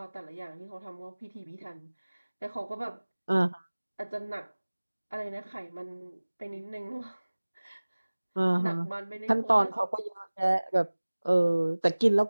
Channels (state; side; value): inverted; both; correlation -1.00